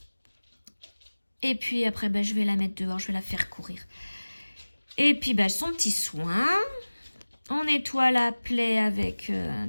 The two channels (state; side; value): inverted; both; correlation -1.00